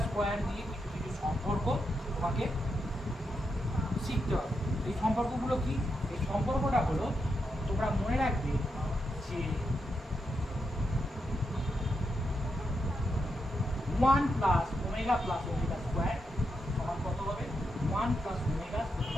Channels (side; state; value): both; normal; correlation 0.84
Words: স্কোয়ার দিয়ে কিছু কিছু সম্পর্ক তোমাকে শিখতে হবে। এই সম্পর্কগুলো কি? এই সম্পর্কটা হলো তোমরা মনে রাখবে যে 1 plus omega plus omega square সমান কত হবে? 1 plus omega